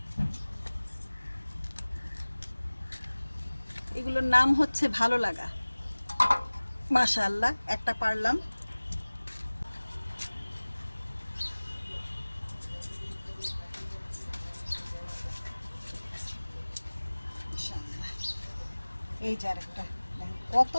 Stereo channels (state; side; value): inverted; both; correlation -1.00